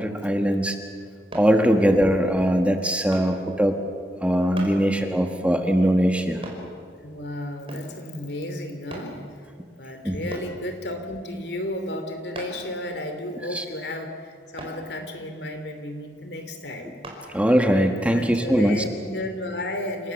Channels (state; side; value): normal; both; correlation 0.81